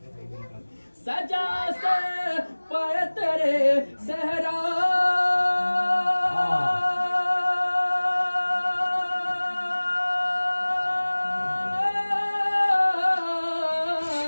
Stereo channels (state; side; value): inverted; both; correlation -1.00